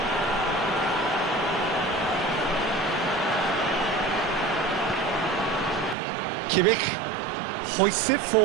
Kimmich hoists it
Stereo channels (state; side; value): drops out; left; at 6.0 s